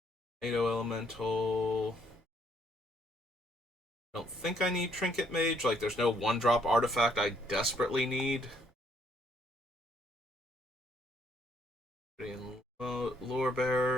NATO Elemental. I don't think I need Trinket Mage. There's no 1-drop artifact I desperately need. Lore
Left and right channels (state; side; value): normal; both; correlation 0.68